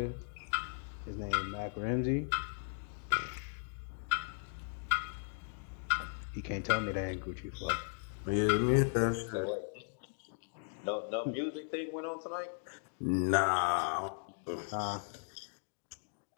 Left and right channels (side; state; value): right; silent; digital silence